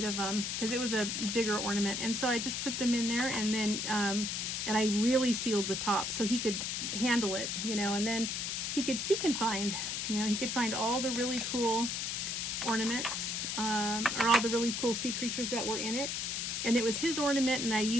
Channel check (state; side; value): noise; left; hiss, 2 dB below the sound